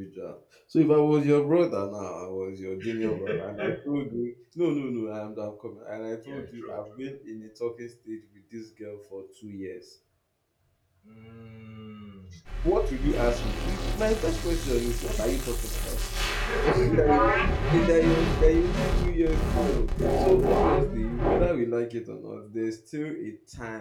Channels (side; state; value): both; identical; correlation 1.00